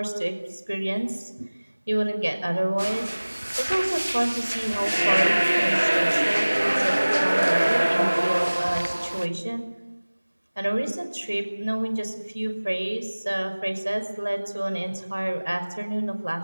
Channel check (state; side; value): inverted; both; correlation -1.00